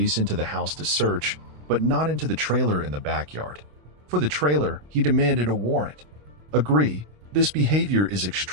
into the house to search, but not into the trailer in the backyard. For the trailer, he demanded a warrant. Agree, this behavior is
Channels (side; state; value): left; late; 27 ms